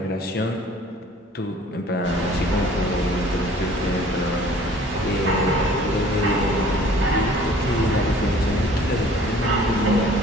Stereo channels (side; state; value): both; normal; correlation 0.52